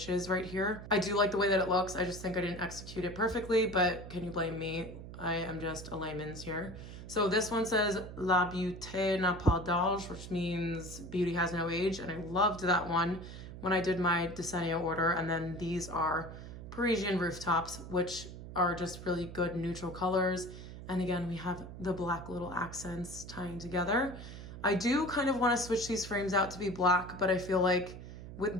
right here. I do like the way that it looks. I just think I didn't execute it perfectly, but can you blame me? I am just a layman's here. So this one says La beauté n'a pas d'âge, which means beauty has no age. And I loved that one when I did my DESENIO order. And then these are Parisian rooftops, which are just really good neutral colors. And again, we have the black little accents tying together. I do kind of want to switch these frames out to be black, but I feel like with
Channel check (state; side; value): noise; right; hum, 12 dB below the sound